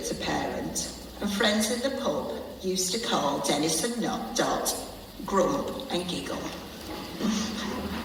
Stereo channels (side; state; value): both; identical; correlation 1.00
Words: parent, and friends in the pub used to call Dennis and Dot Grump and Giggle.